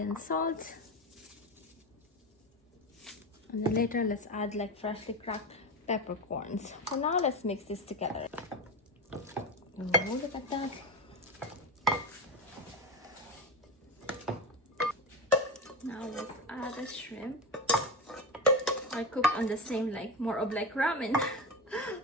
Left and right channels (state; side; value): normal; both; correlation 0.19